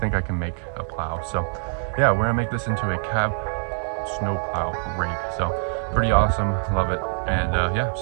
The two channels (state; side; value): silent; left; digital silence